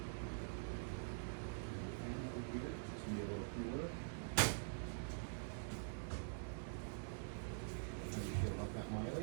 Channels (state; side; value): silent; left; digital silence